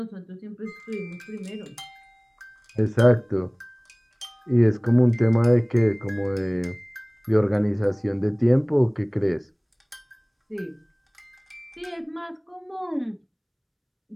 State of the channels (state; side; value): identical; both; correlation 1.00